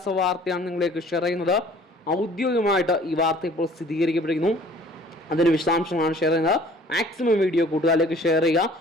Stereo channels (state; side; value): normal; both; correlation 0.52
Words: വാർത്തയാണ് നിങ്ങളിലേക്ക് ഷെയർ ചെയ്യുന്നത്. ഔദ്യോഗികമായിട്ട് ഈ വാർത്ത ഇപ്പോൾ സ്ഥിരീകരിക്കപ്പെട്ടിരിക്കുന്നു. അതിന് വിശദാംശങ്ങളാണ് ഷെയർ ചെയ്യുന്നത്. മാക്സിമം വീഡിയോ കൂട്ടുകാരിലേക്ക് ഷെയർ ചെയ്യുക.